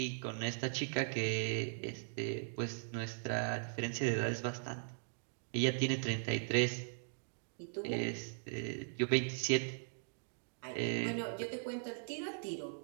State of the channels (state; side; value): silent; left; digital silence